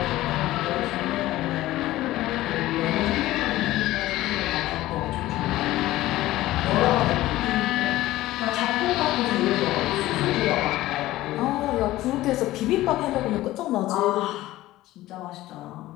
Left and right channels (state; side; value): quieter; right; 16.3 dB